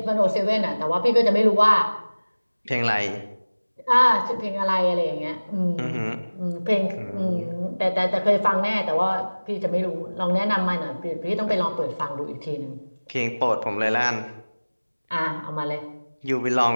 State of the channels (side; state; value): both; inverted; correlation -1.00